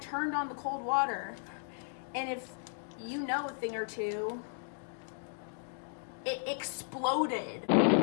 on the cold water. And if you know a thing or two, it exploded.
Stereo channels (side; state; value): right; silent; digital silence